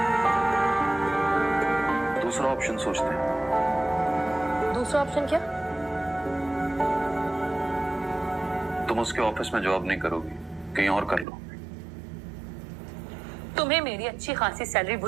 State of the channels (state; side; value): drops out; left; at 11.2 s